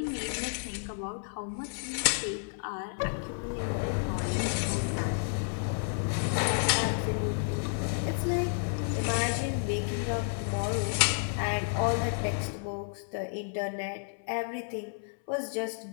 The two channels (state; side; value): silent; right; 57 dB below the other